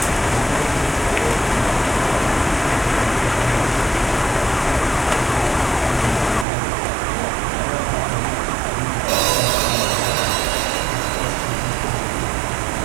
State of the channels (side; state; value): left; drops out; at 6.5 s